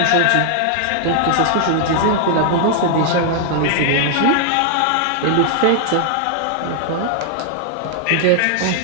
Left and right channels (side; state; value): both; different; correlation 0.00